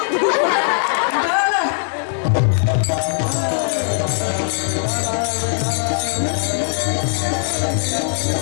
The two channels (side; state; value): right; silent; digital silence